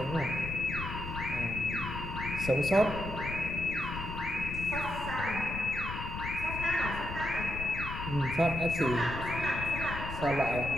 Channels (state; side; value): noise; left; rumble, 7 dB below the sound